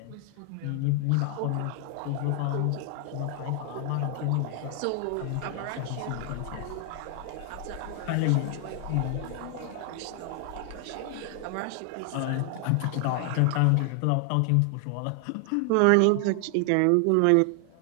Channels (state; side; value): different; both; correlation 0.00